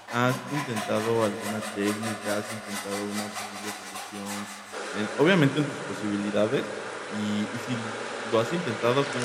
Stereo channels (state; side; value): identical; both; correlation 1.00